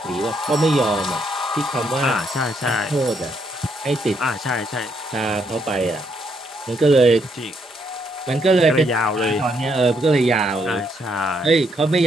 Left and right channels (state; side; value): normal; both; correlation 0.74